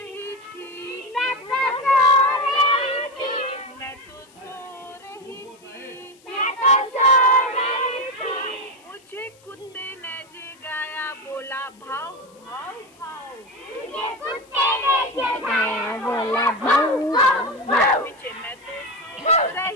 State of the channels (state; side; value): noise; left; hiss, 29 dB below the sound